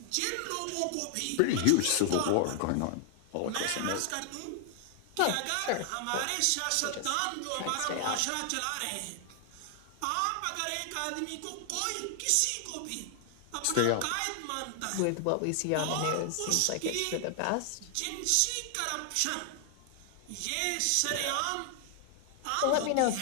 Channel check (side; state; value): both; different; correlation 0.00